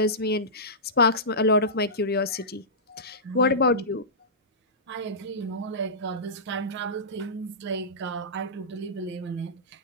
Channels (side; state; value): both; normal; correlation -0.17